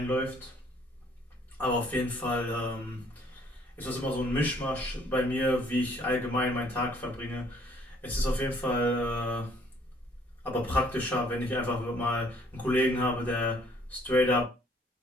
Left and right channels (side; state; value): both; normal; correlation 0.62